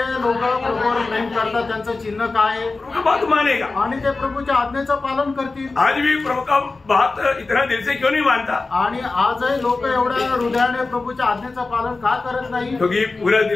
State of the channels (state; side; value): quieter; right; 3.7 dB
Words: लोक प्रभूवर प्रेम करतात त्यांचं चिन्ह काय आहे? प्रभु का बात मानेगा. आणि ते प्रभूच्या आज्ञेचं पालन करतील. आज भी प्रभु का बात इतना दिल से क्यों नहीं मानता? आणि आजही लोक एवढ्या हृदयाने प्रभूच्या आज्ञेचं पालन का करत नाही? क्योंकि पूरा